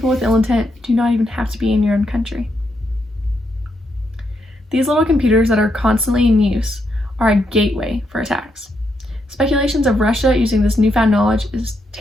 with ill intent do not even have to be in your own country. These little computers that are constantly in use are a gateway for attacks. Speculations of Russia using this newfound knowledge is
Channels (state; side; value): normal; both; correlation 0.80